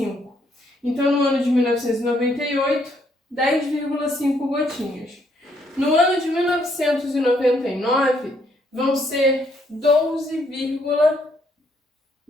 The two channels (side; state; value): both; normal; correlation 0.71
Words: Então, no ano de 1998, 10,5 gotinhas. No ano de 1999, vão ser